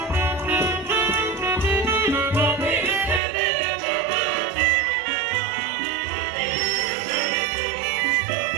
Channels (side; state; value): left; drops out; at 3.2 s